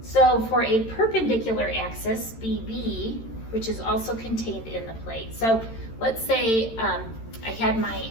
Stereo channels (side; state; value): right; late; 13 ms